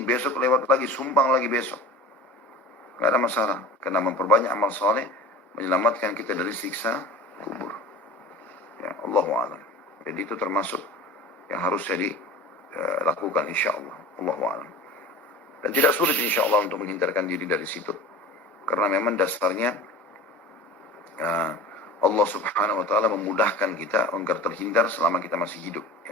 besok lewat lagi, sumbang lagi besok. Gak ada masalah. Karena memperbanyak amal soleh, menyelamatkan kita dari siksa kubur. Ya, Allahu a'lam. Jadi itu termasuk yang harus jadi lakukan insyaAllah. Allahu a'lam. Dan tidak sulit insyaAllah untuk menghindarkan diri dari situ. Karena memang dasarnya Allah Subhanahu wa ta'ala memudahkan kita agar terhindar selama kita masih hidup.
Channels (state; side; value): normal; both; correlation 0.37